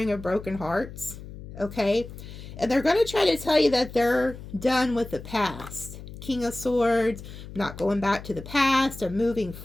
of broken hearts, okay? And they're going to try to tell you that they're done with the past. King of Swords, not going back to the past or moving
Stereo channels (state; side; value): noise; left; hum, 13 dB below the sound